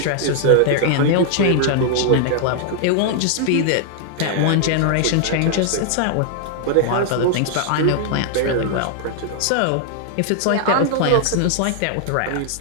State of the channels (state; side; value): different; both; correlation 0.00